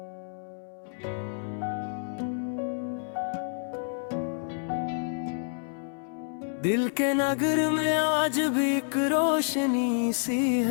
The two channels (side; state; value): right; silent; 59 dB below the other